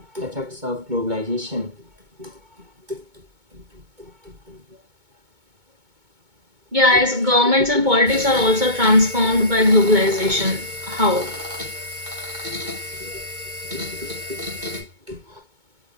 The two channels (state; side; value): late; left; 2.2 ms